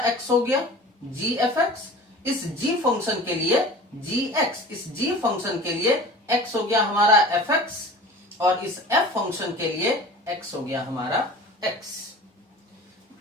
x हो गया जी एफ एक्स। इस g फंक्शन के लिए जी एक्स, इस g फंक्शन के लिए x हो गया हमारा एफ एक्स, और इस f फंक्शन के लिए x हो गया हमारा x।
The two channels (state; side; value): normal; both; correlation 0.40